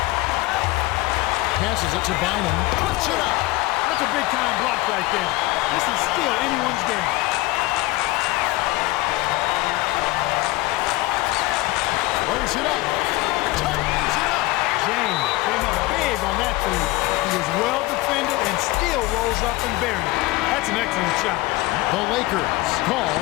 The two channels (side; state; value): right; quieter; 19.7 dB